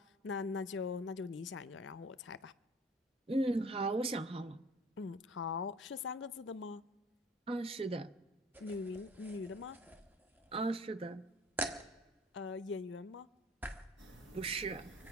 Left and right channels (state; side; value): normal; both; correlation 0.49